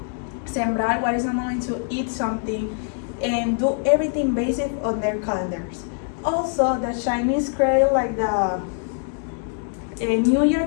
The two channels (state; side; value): silent; right; 57 dB below the other